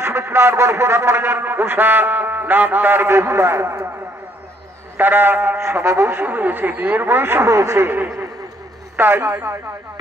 সুমিত্রার গর্ভে জন্ম নিলেন উষা, নাম তার বেহুলা। তারা সমবয়সী হয়েছে, বিয়ের বয়স হয়েছে। তাই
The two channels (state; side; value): normal; both; correlation 0.67